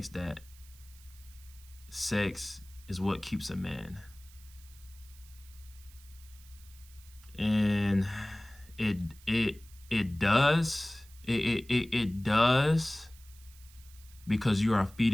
that sex is what keeps a man. And it does. It does, because you are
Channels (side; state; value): right; noise; hiss, 24 dB below the sound